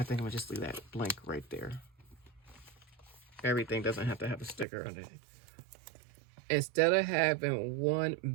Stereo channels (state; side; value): drops out; left; at 4.7 s